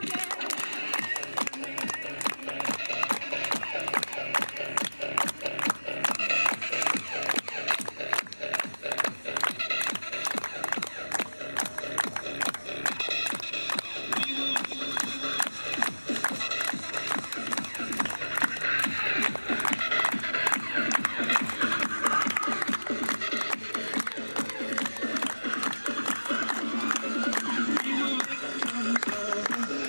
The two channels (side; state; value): both; inverted; correlation -1.00